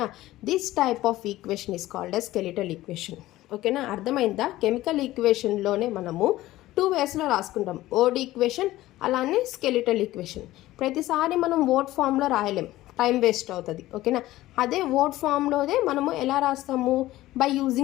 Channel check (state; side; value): quieter; right; 16.3 dB